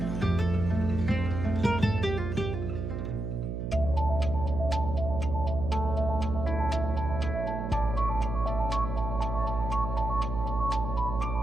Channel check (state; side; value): noise; right; hum, 4 dB below the sound